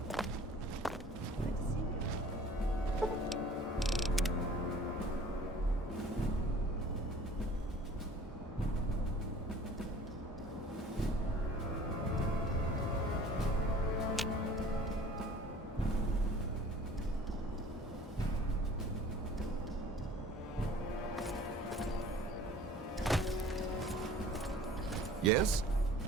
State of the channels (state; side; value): normal; both; correlation 0.48